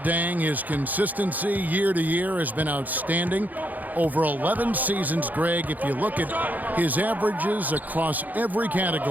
his consistency year to year has been outstanding. Over 11 seasons, Greg, if you look at his averages across every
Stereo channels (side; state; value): left; late; 0.082 ms